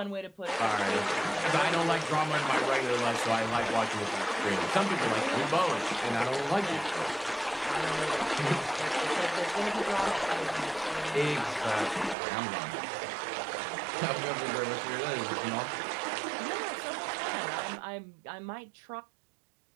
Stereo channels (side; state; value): left; drops out; at 12.2 s